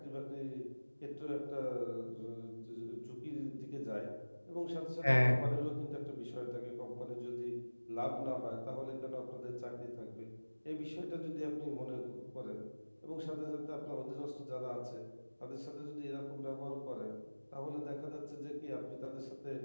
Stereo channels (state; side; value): inverted; both; correlation -1.00